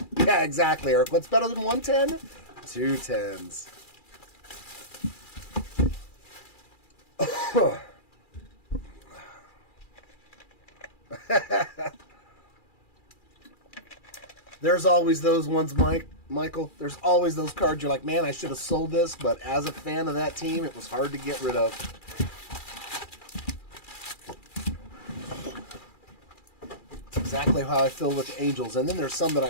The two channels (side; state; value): right; late; 2.4 ms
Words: Yeah, exactly, Eric. What's better than 110? 2 10s. There's always those ones, Michael. There's always those cards you're like, man, I should have sold this, but as a fan of that team, it was hard to get rid of. It's exactly how I feel with the Angels. And then there's some that